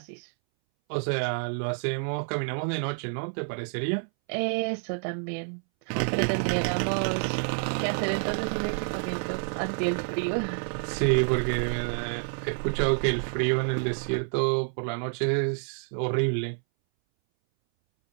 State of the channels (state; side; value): silent; left; 59 dB below the other